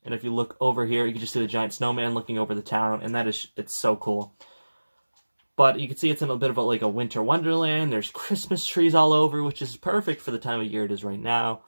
and if you look over here, you can just see the giant snowman looking over the town, and it's so cool. But you can see it's in a bit of like a winter wonderland. There's Christmas trees all over, which is perfect for the time of year it is right now.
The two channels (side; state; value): both; inverted; correlation -1.00